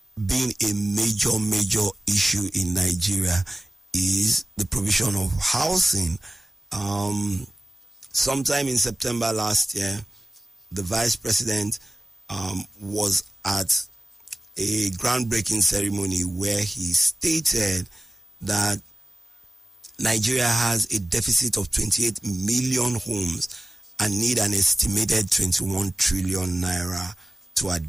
been a major issue in Nigeria is the provision of housing. Sometime in September last year, the vice president was at a groundbreaking ceremony where he stated that Nigeria has a deficit of 28 million homes and need an estimated 21 trillion naira to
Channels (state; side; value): normal; both; correlation 0.97